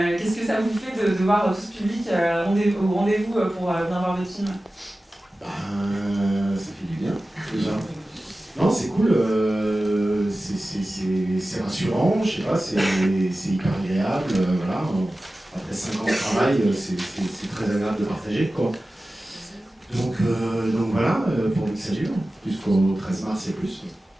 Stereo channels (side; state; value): both; normal; correlation 0.95